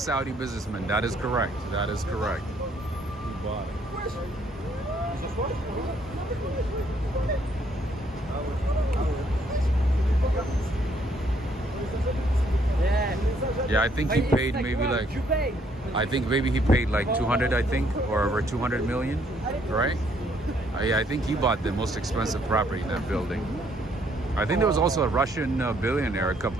businessman. That is correct. That is correct. bought it. Yeah, I think he paid maybe like, I think maybe he paid like 200, I think, or over 200 million, right? I think he bought the most expensive property in that building. I think there was also a Russian billionaire a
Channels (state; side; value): normal; both; correlation 0.68